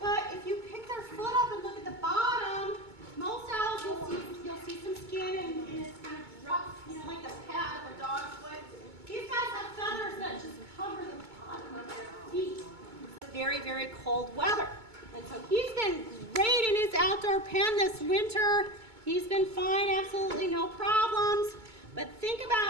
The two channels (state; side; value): late; left; 2.2 ms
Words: but if you pick their foot up and look at the bottom, most owls you'll see some skin and it's kind of rough, you know, like the pad of a dog's foot. These guys have feathers that just cover the bottom of their feet. It's very, very cold weather. And so he's been great in his outdoor pen this winter. He's been fine, absolutely no problems. But think